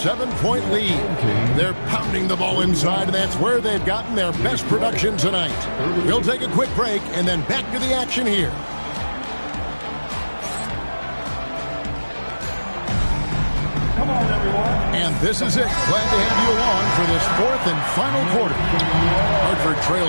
lead. They're pounding the ball inside, and that's where they've gotten their best production tonight. We'll take a quick break and then back to the action here. And this is it. Glad to have you along for this fourth and final quarter. Hartford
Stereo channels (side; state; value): both; inverted; correlation -1.00